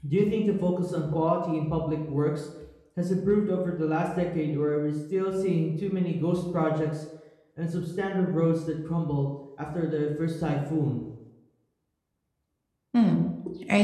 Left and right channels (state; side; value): identical; both; correlation 1.00